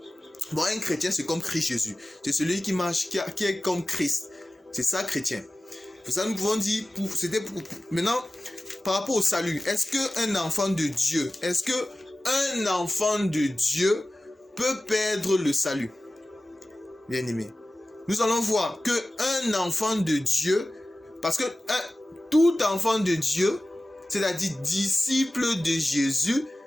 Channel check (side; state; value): both; normal; correlation 0.96